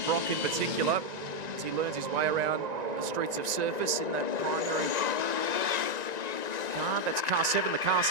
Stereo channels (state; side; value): late; left; 1.9 ms